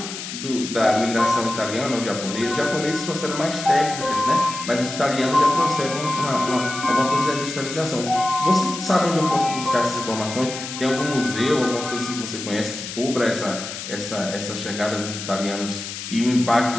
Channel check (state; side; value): noise; left; hiss, 8 dB below the sound